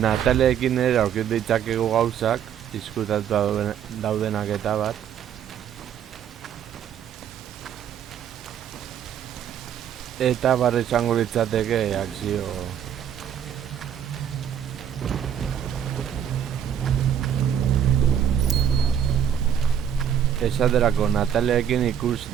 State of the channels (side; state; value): left; quieter; 9.1 dB